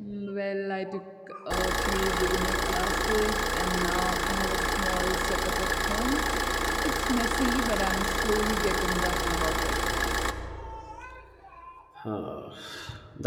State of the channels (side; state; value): both; identical; correlation 1.00